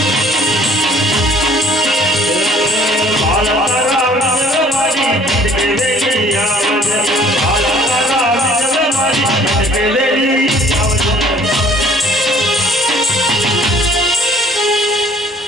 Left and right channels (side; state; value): both; normal; correlation 0.55